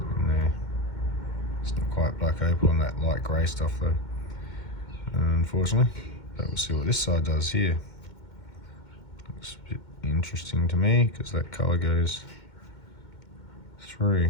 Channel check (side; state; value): right; late; 2.1 ms